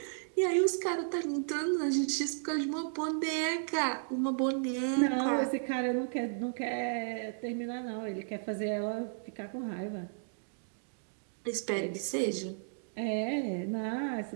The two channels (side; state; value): left; silent; digital silence